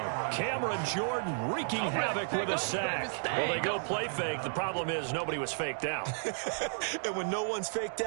Cameron Jordan wreaking havoc with a sack. Well, they go play fake. The problem is nobody was faked out. And when no one's faked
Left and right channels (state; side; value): silent; left; digital silence